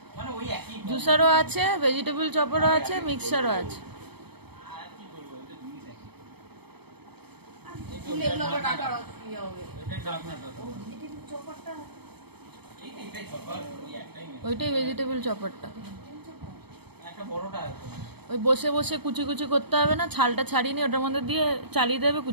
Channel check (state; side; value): late; left; 0.97 ms